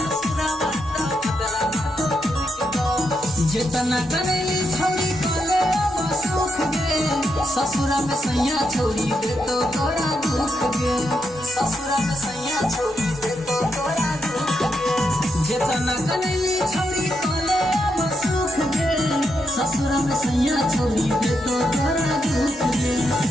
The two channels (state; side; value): noise; left; rumble, 26 dB below the sound